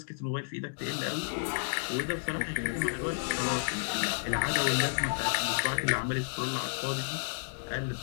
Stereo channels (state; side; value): silent; right; digital silence